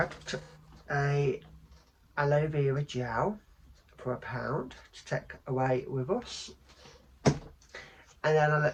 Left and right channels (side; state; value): both; identical; correlation 1.00